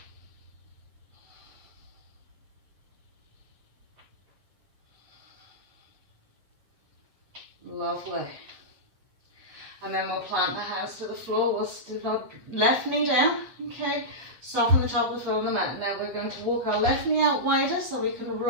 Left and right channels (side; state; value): left; late; 8.1 ms